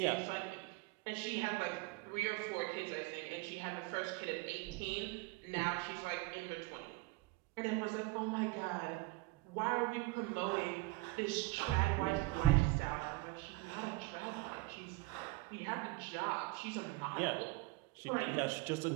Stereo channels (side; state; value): left; quieter; 21.2 dB